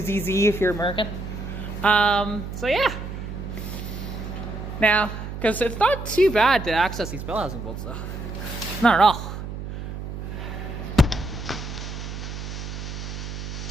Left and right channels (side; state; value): right; noise; hum, 7 dB below the sound